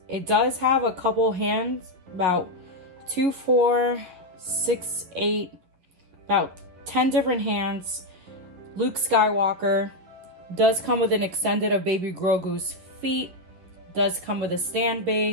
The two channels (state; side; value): late; left; 11 ms